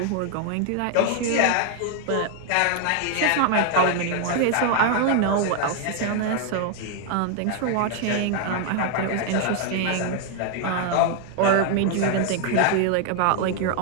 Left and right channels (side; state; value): both; different; correlation 0.00